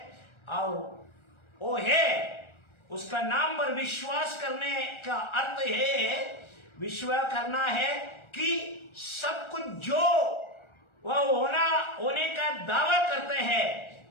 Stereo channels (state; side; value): late; right; 1.4 ms